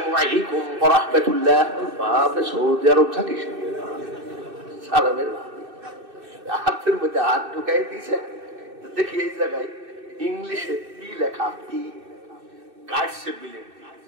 আলাইকুম ওয়া রাহমাতুল্লাহ। বাপরে, সৌদি আরব থাকিস? সালামের হাতের মধ্যে হাত ঢুকাই দিয়েছে। দেখি এই জায়গায় ইংলিশে পি লেখা, পি কাটছে বিলেট দিয়ে।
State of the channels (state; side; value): late; left; 2.6 ms